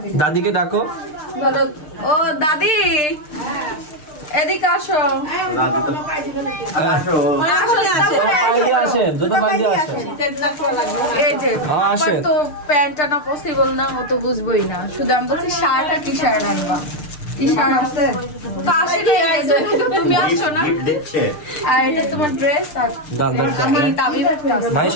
দাদিকে ডাকো। ও দাদি এদিকে আসো। এই যে আমার তো প্যান্ট আনা পসিবল না, ও তো বুঝবোই না, শুধু আমি বলছি শার্ট আর টি শার্ট আনবা। টি শার্ট আছে তো আসে তুমি আসছো না, আর এটা তোমার ড্রেস। আর আমি তাবিব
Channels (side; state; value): right; late; 6.7 ms